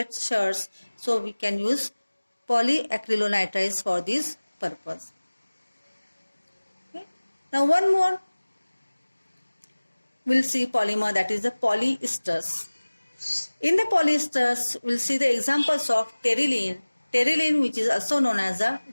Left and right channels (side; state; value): both; inverted; correlation -1.00